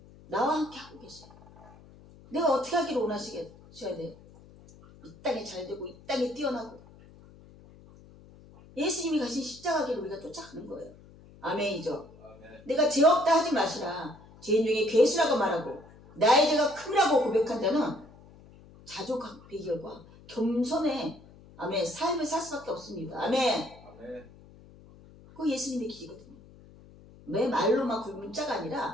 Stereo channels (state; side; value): noise; left; hum, 22 dB below the sound